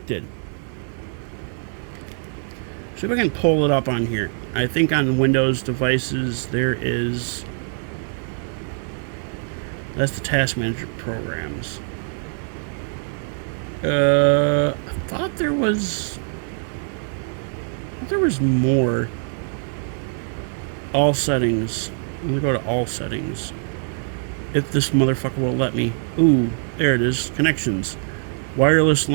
See if I can pull it up on here. I think on Windows devices there is... That's the task manager programs. I thought there was more. All settings. I'm gonna go to all settings. If this motherfucker will let me. Ooh, there it is. Connections. Wireless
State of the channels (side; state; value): left; silent; 59 dB below the other